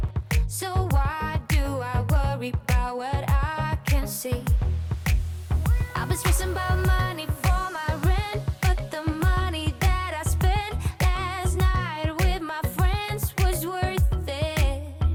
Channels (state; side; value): identical; both; correlation 1.00